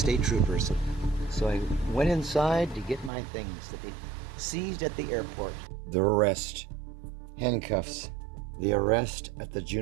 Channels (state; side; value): drops out; left; at 3.1 s